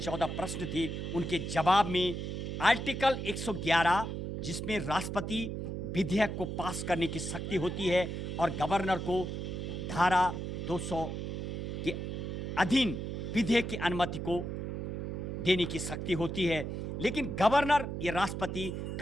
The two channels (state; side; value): noise; right; hum, 4 dB below the sound